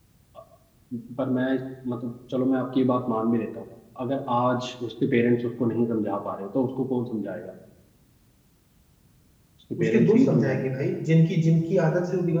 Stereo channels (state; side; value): identical; both; correlation 1.00